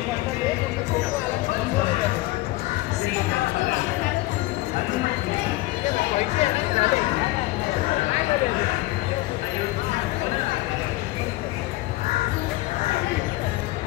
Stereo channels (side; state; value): right; quieter; 19.0 dB